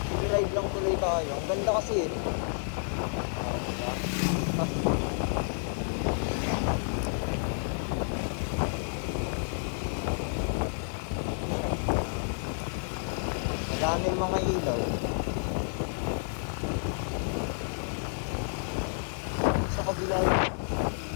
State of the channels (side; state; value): right; silent; 58 dB below the other